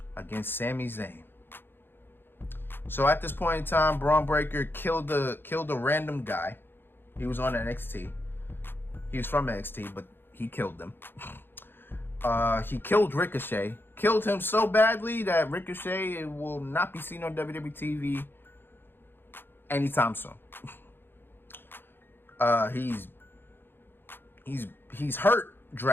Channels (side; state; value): right; late; 0.10 ms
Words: against Sami Zayn. So at this point in time, Braun Breaker killed a random guy. He was on NXT. He was from NXT, but he killed them. He killed Ricochet. Killed him so badly that Ricochet will not be seen on WWE TV anytime soon. He's hurt